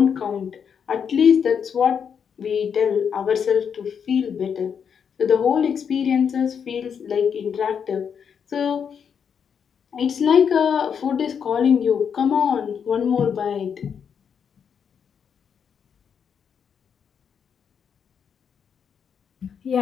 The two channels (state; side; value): quieter; right; 7.2 dB